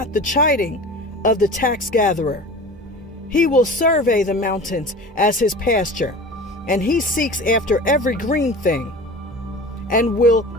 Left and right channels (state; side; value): normal; both; correlation 0.36